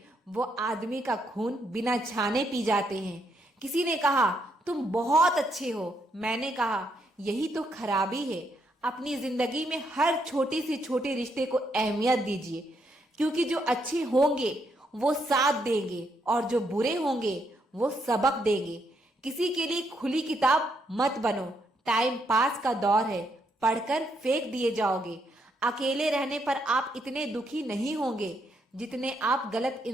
वो आदमी का खून बिना छाने पी जाते हैं। किसी ने कहा तुम बहुत अच्छे हो, मैंने कहा यही तो खराबी है। अपनी जिंदगी में हर छोटे से छोटे रिश्ते को अहमियत दीजिए, क्योंकि जो अच्छे होंगे वो साथ देंगे और जो बुरे होंगे वो सबक देंगे। किसी के लिए खुली किताब मत बनो, टाइम पास का दौर है, पढ़कर फेंक दिए जाओगे। अकेले रहने पर आप इतने दुखी नहीं होंगे जितने आप गलत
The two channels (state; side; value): normal; both; correlation 0.76